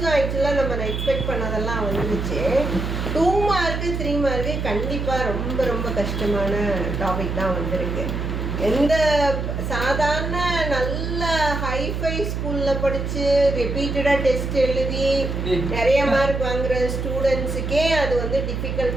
ஆக்சுவலாக நம்ம எக்ஸ்பெக்ட் பண்ணதெல்லாம் வந்துருச்சு. 2 மார்க்கு 3 மார்க்கு கண்டிப்பாக ரொம்ப ரொம்ப கஷ்டமான டாபிக் தான் வந்திருக்கு. எந்த சாதாரண நல்ல ஹைஃபை ஸ்கூலில் படித்து ரிப்பீட்டடாக டெஸ்ட் எழுதி நிறைய மார்க் வாங்குகிற ஸ்டூடெண்ட்ஸுக்கே அது வந்து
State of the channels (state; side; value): noise; right; hum, 3 dB below the sound